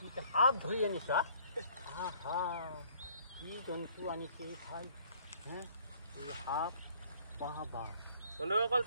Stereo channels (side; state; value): both; inverted; correlation -0.59